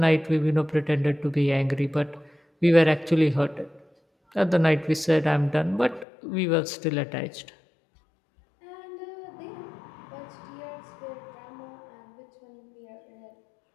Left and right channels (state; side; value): drops out; right; at 6.1 s